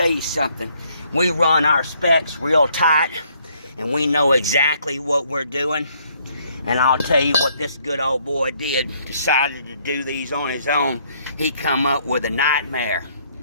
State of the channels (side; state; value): both; inverted; correlation -0.68